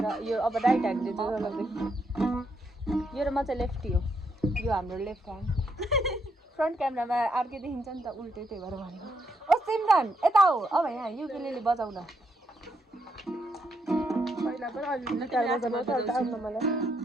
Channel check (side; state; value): both; normal; correlation 0.77